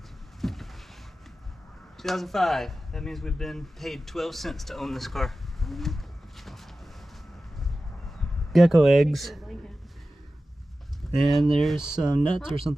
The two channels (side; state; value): both; normal; correlation 0.95